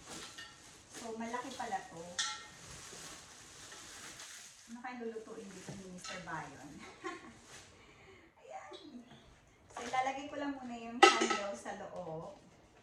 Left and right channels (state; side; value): identical; both; correlation 1.00